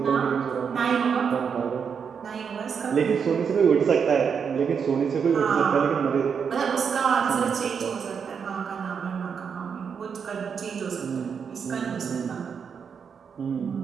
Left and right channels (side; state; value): left; quieter; 6.6 dB